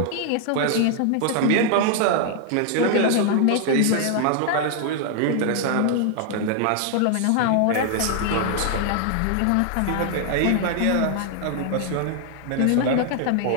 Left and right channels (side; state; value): both; different; correlation 0.00